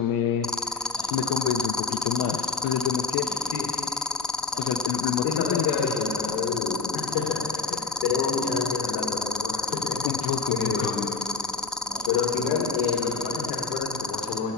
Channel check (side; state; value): right; quieter; 4.8 dB